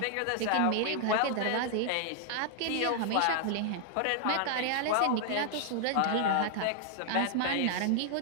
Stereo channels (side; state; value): both; different; correlation 0.00